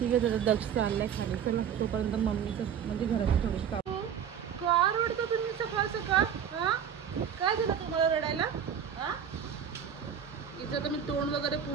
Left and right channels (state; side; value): quieter; left; 8.2 dB